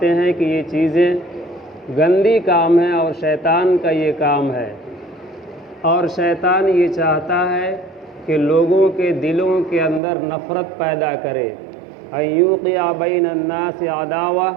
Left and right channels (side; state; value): left; drops out; at 10.0 s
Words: ہیں کہ یہ چیزیں گندی کام ہے اور شیطان کا یہ کام ہے، اور شیطان یہ چاہتا ہے کہ لوگوں کے دلوں کے اندر نفرت پیدا کرے۔ ایوقع بین الناس عداوہ،